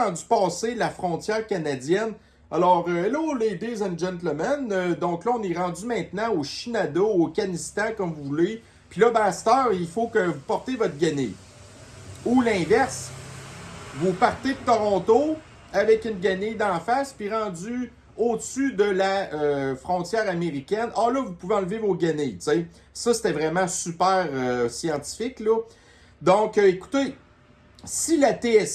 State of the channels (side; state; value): both; identical; correlation 1.00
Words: rendu passé la frontière canadienne, alors, hello ladies and gentlemen, donc là, on est rendu maintenant au Shenandoah, au Kanistan, comme vous voulez, puis là, à cette heure, il faut que vous portez votre guenille. Ou l'inverse, vous partez de Toronto avec une guenille d'en face, puis rendu au-dessus de la frontière américaine, là, vous pouvez enlever vos guenilles, tu sais. Ça, c'était vraiment super scientifique, là. Donc, écoutez, si la